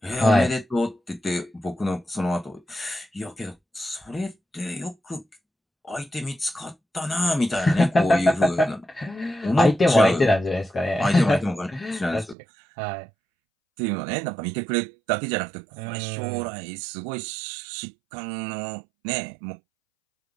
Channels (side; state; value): left; drops out; at 12.4 s